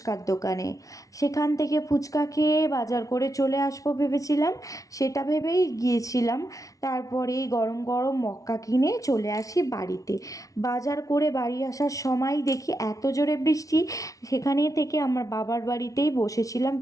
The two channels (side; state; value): right; late; 0.17 ms